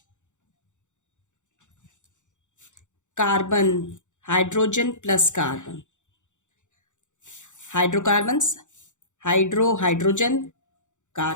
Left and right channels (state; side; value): late; right; 0.85 ms